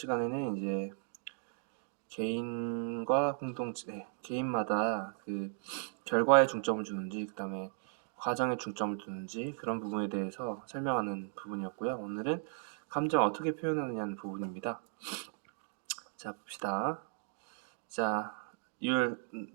이제 개인과 공동체, 개인마다 그 결과에 중점을 주는지, 그 다음에 과정에 중점을 두는지 그런 부분에 대해서 설명하는 부분이었고요. 오늘은 감정 어떻게 표현하느냐는 부분입니다. 자, 봅시다. 자, the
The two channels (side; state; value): left; silent; digital silence